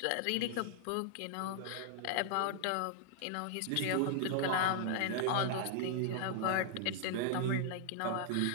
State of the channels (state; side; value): different; both; correlation 0.00